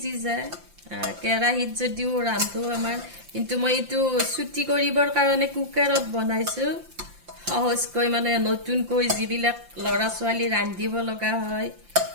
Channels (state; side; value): late; left; 5.8 ms